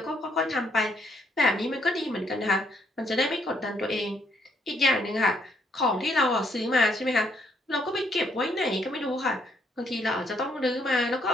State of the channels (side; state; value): both; normal; correlation 0.71